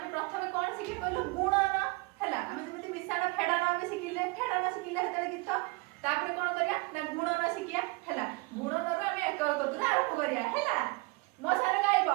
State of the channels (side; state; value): left; quieter; 26.5 dB